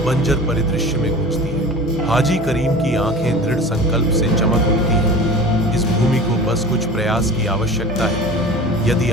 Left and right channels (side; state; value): both; normal; correlation 0.36